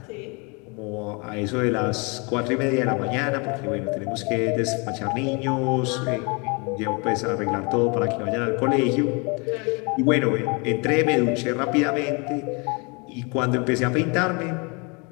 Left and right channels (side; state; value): right; quieter; 31.3 dB